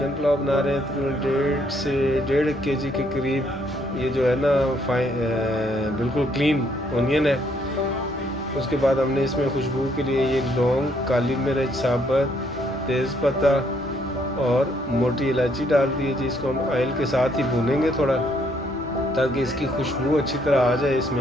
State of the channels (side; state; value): both; normal; correlation 0.69